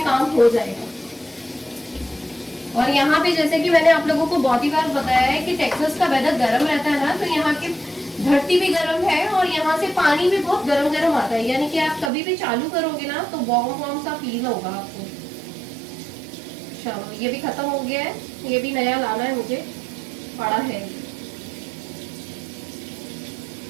काम हो जाएगा। और यहाँ पे जैसे कि मैंने आप लोगों को बहुत ही बार बताया है कि टेक्सास का वेदर गर्म रहता है ना, तो यहाँ के धरती भी गर्म है और यहाँ से पानी भी बहुत गर्म गर्म आता है, यानी कि आप कभी भी चालू करोगे ना तो वार्म वार्म सा फील होगा आपको। चलो ये भी खत्म हो गया है, ये भी नया लाना है मुझे, पड़ा है।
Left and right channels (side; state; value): left; drops out; at 12.1 s